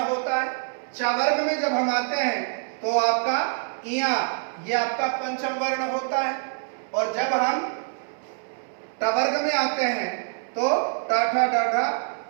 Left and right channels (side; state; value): left; silent; 61 dB below the other